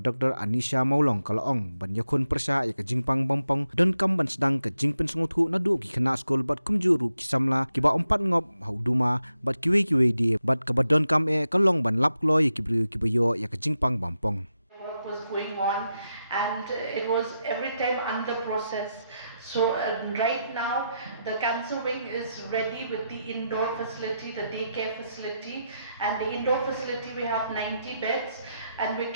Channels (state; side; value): inverted; both; correlation -0.86